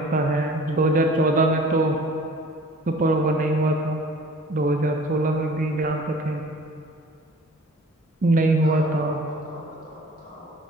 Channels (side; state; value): both; normal; correlation 0.48